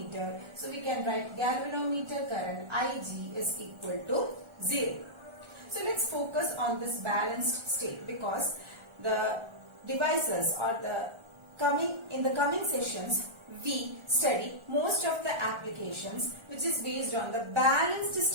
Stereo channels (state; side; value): late; left; 1.4 ms